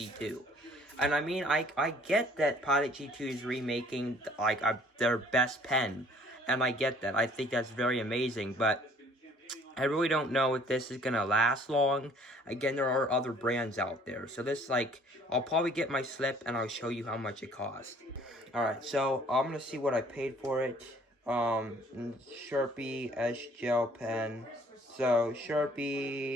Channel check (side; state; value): both; normal; correlation 0.57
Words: And I mean, I get that Pilot G2 is remaking like their best pen, and I get that. I think that's very amazing, but I really don't know if this is gonna last long. Again, there are other brands out there. So this, like, I'll probably get my slip and I'll show you how much it costs. Alright, so I'm gonna see what I paid for it. Sharpie Edge Gel Pen. So